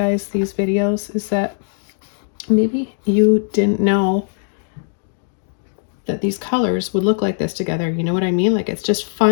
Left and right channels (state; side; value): silent; right; digital silence